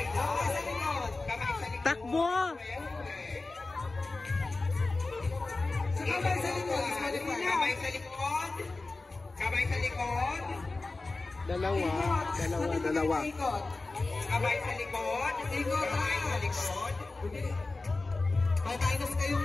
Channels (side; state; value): right; quieter; 3.4 dB